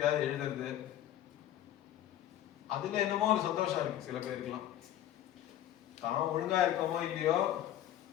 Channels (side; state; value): right; quieter; 12.2 dB